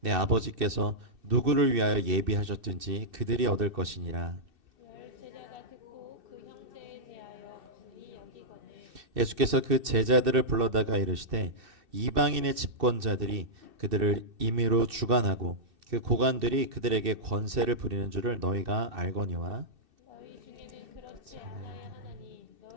아버지께서 누구를 위하여 예비하셨든지 그들이 얻을 것이니라. 예수께서 그 제자들을 불러다가 이르시되 이방인의 집권자들이 그들을 임의로 주관하고 그 고관들이 그들에게 권세를 부리는 줄을 너희가 알거니와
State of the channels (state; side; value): late; left; 2.6 ms